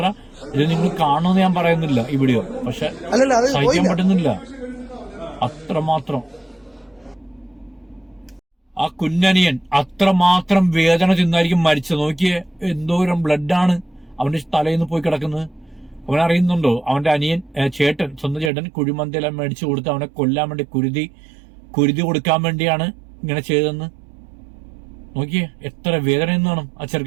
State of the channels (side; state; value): left; drops out; at 18.5 s